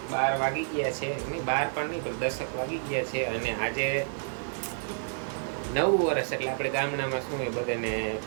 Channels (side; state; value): left; silent; digital silence